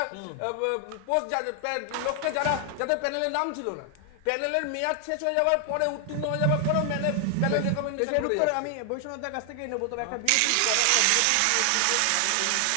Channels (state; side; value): different; both; correlation 0.00